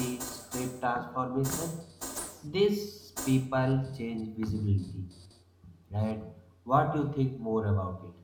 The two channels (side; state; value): both; identical; correlation 1.00